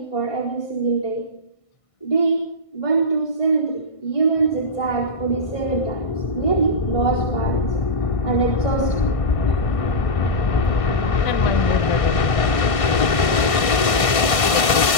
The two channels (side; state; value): right; late; 1.5 ms